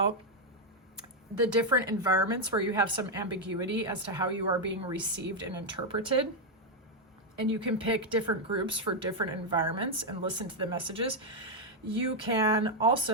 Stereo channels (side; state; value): both; normal; correlation 0.01